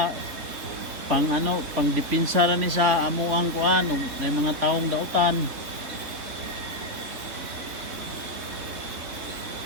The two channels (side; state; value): left; late; 3.9 ms